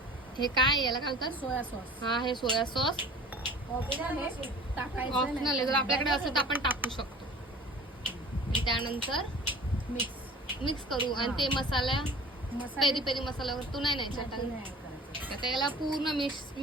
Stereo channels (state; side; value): normal; both; correlation 0.44